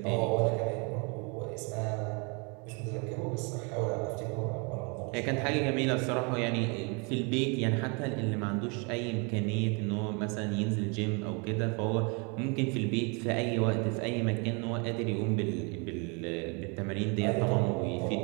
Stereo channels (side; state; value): left; quieter; 32.8 dB